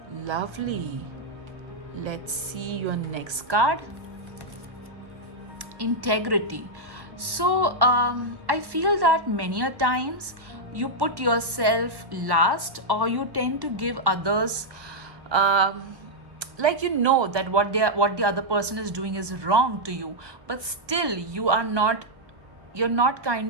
Lovely. Let's see your next card. Integrity. So I feel that many a times you put yourself last, or you tend to give others like that what the other person is doing is wrong to you, but still you're not kind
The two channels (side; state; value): left; late; 1.1 ms